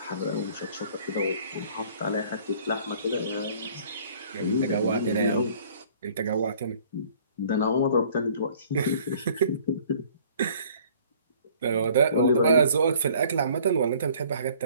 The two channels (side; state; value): both; inverted; correlation -0.55